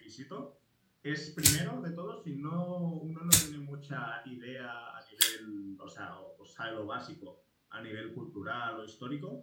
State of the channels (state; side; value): identical; both; correlation 1.00